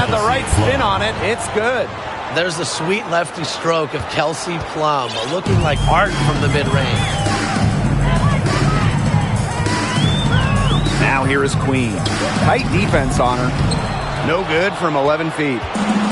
the right spin on it. It's good. There's the sweet lefty stroke of Kelsey Plum, looking like art from the mid-range. Now here is Queen. Tight defense on her. No good from 11 feet.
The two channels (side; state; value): both; identical; correlation 1.00